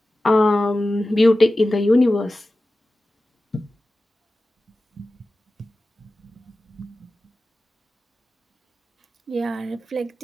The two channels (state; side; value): normal; both; correlation 0.95